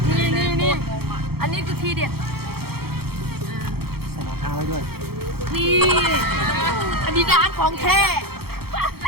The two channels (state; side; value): late; left; 0.95 ms